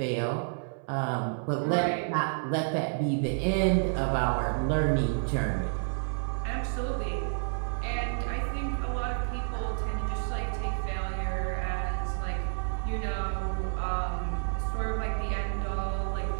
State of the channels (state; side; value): silent; left; 58 dB below the other